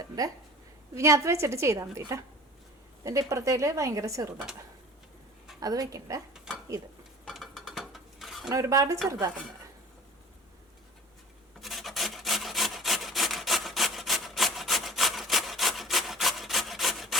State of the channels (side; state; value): both; normal; correlation 0.43